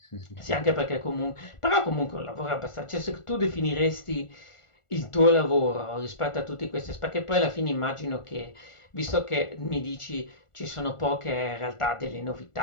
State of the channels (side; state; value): right; late; 1.4 ms